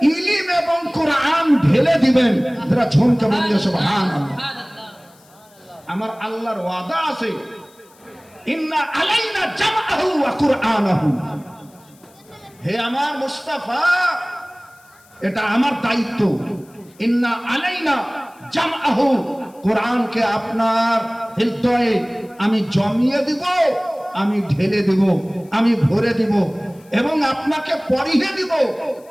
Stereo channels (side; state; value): left; noise; hiss, 29 dB below the sound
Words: ইলম এবং কোরআন ঢেলে দিবেন। যারা ঝুমকে বলিয়ে সুবহানাল্লাহ। আমার আল্লাহর ওয়াদা আছে, ইন্না আলাইনা জামআহু ওয়া কুরআনাহু। হে আমার মুস্তাফা, এটা আমার দায়িত্ব। ইন্না আলাইনা জামআহু, কোরআনকে আপনার হৃদয়ে আমি জমিয়ে দিব, আমি ঢেলে দিব, আমি ভরে দিব, এবং আপনাকে পড়িয়ে দিব।